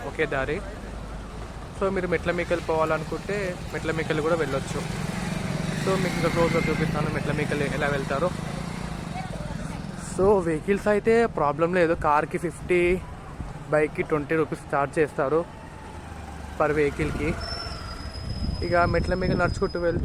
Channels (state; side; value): identical; both; correlation 1.00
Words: ఒకే దారి. సో మీరు మెట్ల మీకెళ్ళి పోవాలనుకుంటే మెట్ల మీకెళ్ళి కూడా వెళ్ళొచ్చు. సో మీకు ఇంకా క్లోజ్గా చూపిస్తాను మెట్ల మీకెళ్ళి ఎలా వెళ్తారో. సో వెహికల్స్ అయితే ప్రాబ్లం లేదు. కార్కి 50, బైక్కి 20 రూపీస్ ఛార్జ్ చేస్తారు పర్ వెహికల్కి. ఇక మెట్ల మీద నడుచుకుంటూ